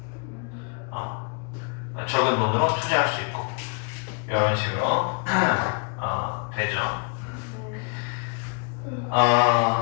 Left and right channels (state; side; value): quieter; right; 37.4 dB